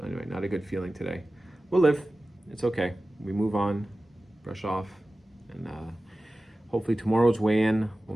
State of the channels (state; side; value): normal; both; correlation 0.96